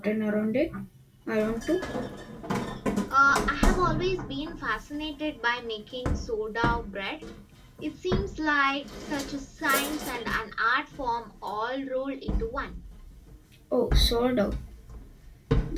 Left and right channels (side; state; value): both; identical; correlation 1.00